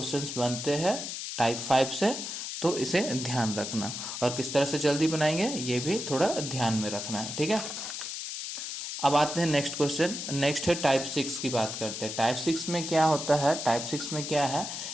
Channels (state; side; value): noise; left; hiss, 6 dB below the sound